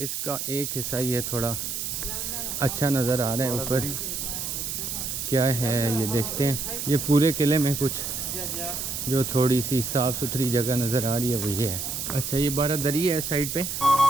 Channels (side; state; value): right; noise; hiss, 4 dB below the sound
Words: एक हिस्सा ये थोड़ा अच्छा नज़र आ रहा है ऊपर। क्या है ये देखते हैं। ये पूरे किले में कुछ जो थोड़ी सी साफ़ सुथरी जगह नज़र आ रही है वो ये है। अच्छा ये बारादरी है साइड पे।